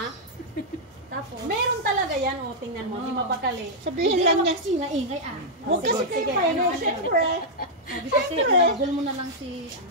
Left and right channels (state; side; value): normal; both; correlation -0.05